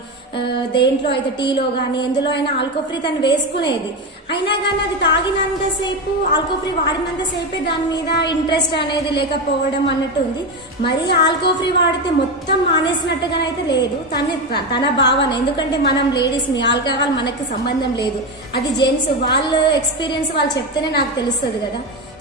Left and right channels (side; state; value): both; normal; correlation 0.16